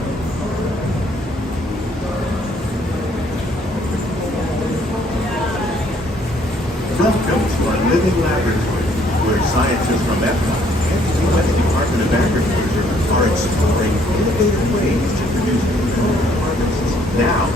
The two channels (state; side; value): normal; both; correlation 0.65